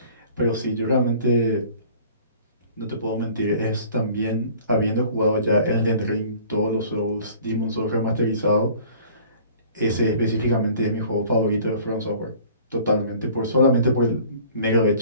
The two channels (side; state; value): both; inverted; correlation -0.49